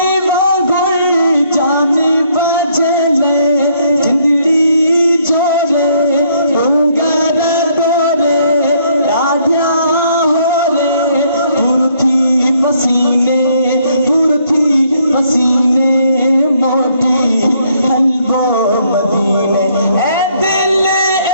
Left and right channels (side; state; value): both; inverted; correlation -0.69